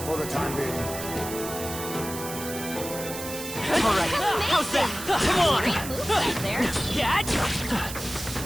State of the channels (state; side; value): noise; right; hiss, 9 dB below the sound